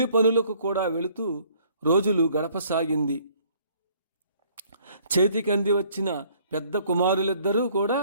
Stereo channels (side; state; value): both; inverted; correlation -0.61